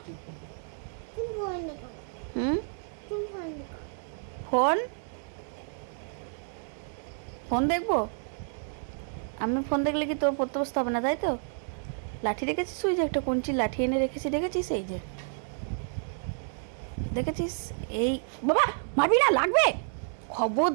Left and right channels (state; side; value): silent; left; digital silence